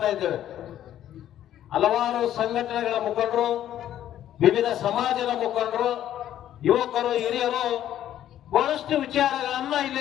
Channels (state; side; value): quieter; right; 11.6 dB